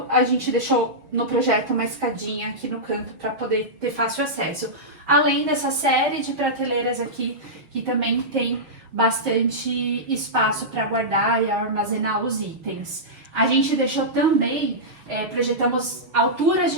A gente deixou no projeto uma escadinha aqui no canto para poder ter fácil acesso. Além dessa série de prateleiras aqui, que também tem bastante espaço para guardar e armazenar os itens. A gente deixou também projetamos alturas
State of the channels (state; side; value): late; left; 6.4 ms